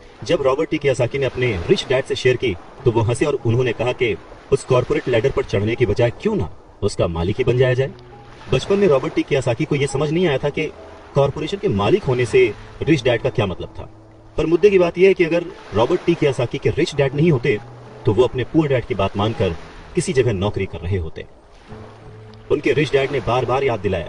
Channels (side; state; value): both; identical; correlation 1.00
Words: जब रॉबर्ट टी कियोसाकी ने अपने रिच डैड से शेयर की तो वो हंसे और उन्होंने कहा कि उस कॉर्पोरेट लैडर पर चढ़ने की बजाय क्यों ना उसका मालिक ही बन जाया जाए। बचपन में रॉबर्ट टी कियोसाकी को यह समझ नहीं आया था कि कॉर्पोरेशन के मालिक होने से रिच डैड का क्या मतलब था। पर मुद्दे की बात यह है कि अगर रॉबर्ट टी कियोसाकी के रिच डैड नहीं होते तो वो अपने पुअर डैड की बात मानकर किसी जगह नौकरी कर रहे होते। उनके रिच डैड ने बार बार याद